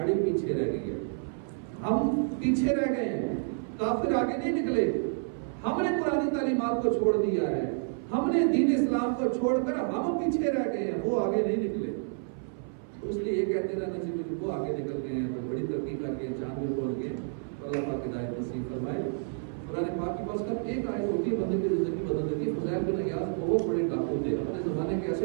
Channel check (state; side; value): silent; left; 58 dB below the other